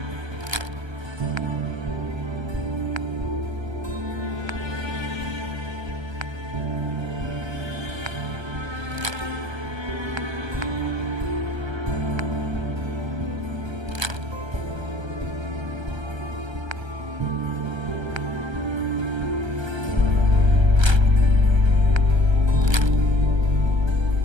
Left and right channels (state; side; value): late; left; 1.3 ms